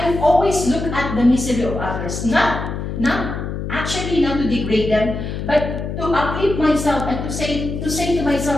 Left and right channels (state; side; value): noise; left; hum, 5 dB below the sound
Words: always look at the misery of others, not to degrade them, but to uplift myself and to say to